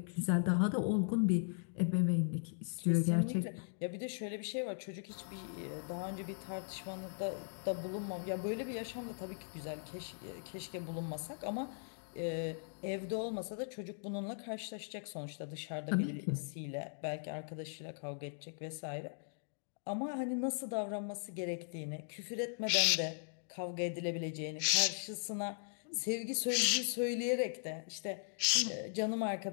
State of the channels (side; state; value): right; silent; digital silence